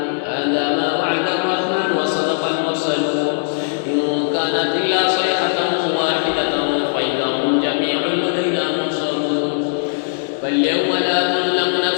كانت إلا صيحة واحدة فإذا هم جميع لدينا محصرون فاليوم لا تظلم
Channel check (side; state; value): right; silent; digital silence